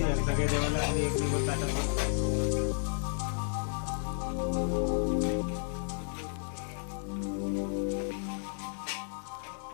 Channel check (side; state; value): right; silent; digital silence